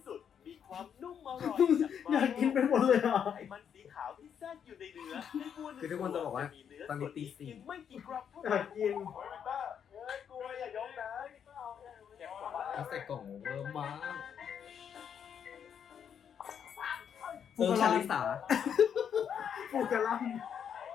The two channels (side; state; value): right; quieter; 8.1 dB